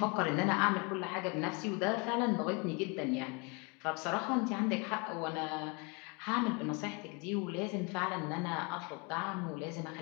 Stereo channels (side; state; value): right; quieter; 30.3 dB